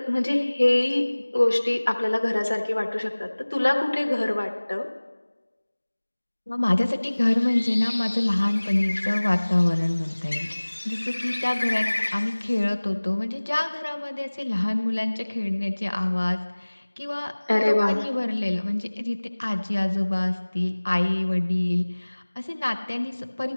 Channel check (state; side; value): inverted; both; correlation -1.00